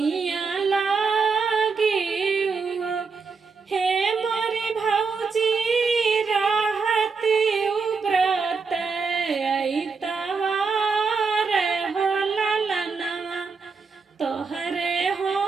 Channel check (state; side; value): quieter; left; 4.9 dB